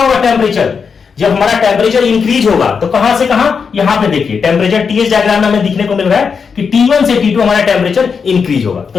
होगा टेम्परेचर, जब हमारा टेम्परेचर इंक्रीज होगा तो कहां से कहां, यहां पे देखिए टेम्परेचर टीएस डायग्राम में हमें दिखने को मिल रहा है कि T1 से T2 हमारा टेम्परेचर इंक्रीज होगा।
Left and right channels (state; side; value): quieter; right; 5.9 dB